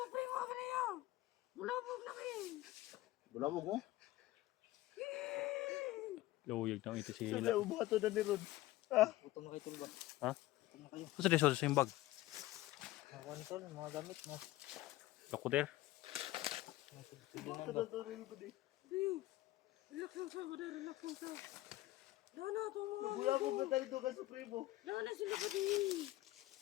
primo ka niya. Bulabog na kayo. Bulabog mo. Luyag na ito si Sana Hila. ubato na ni Ron. Utong na kayo tol ba? Ha? Masa di sa yung bag? Mga kuwan tol, mga gamit mo. Lakuter? Ubato na to rin ko di. Relax lang sa, bada, relax lang sa. Dana ito mga. Kuya mo ba tayo doon ka Supremo? Dana sila ba di?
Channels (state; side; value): quieter; right; 17.1 dB